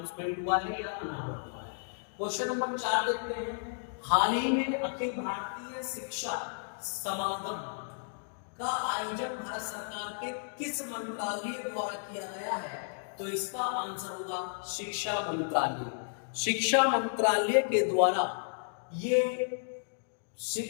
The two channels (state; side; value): silent; right; digital silence